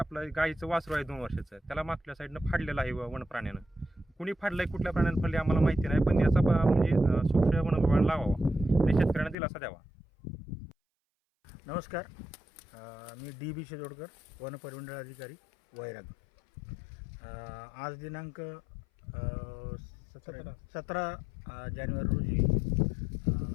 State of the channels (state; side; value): drops out; right; at 9.3 s